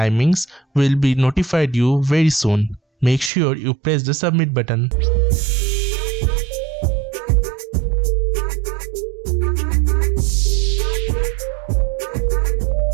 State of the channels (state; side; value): drops out; left; at 3.3 s